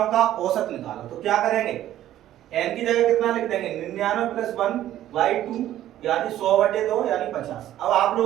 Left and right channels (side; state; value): left; quieter; 12.8 dB